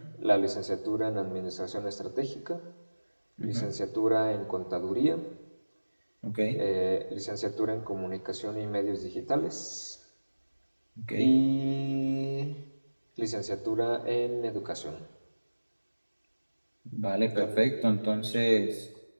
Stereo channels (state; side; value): inverted; both; correlation -1.00